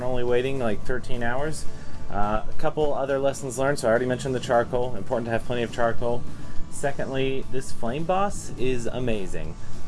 only waiting like 13 hours. A couple other lessons learned. So I already mentioned the charcoal. Important to have plenty of charcoal. Secondly, this Flame Boss is amazing.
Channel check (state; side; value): identical; both; correlation 1.00